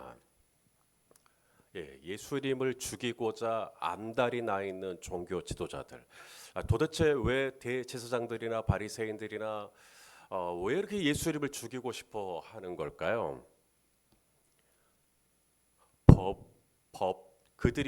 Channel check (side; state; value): both; identical; correlation 1.00